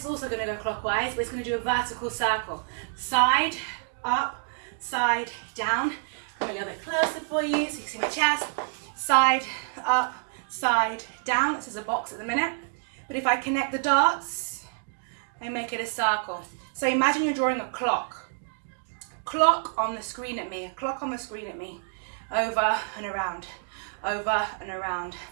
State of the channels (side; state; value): left; silent; 59 dB below the other